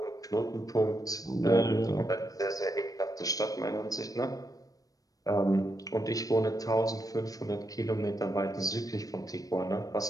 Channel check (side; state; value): right; late; 0.18 ms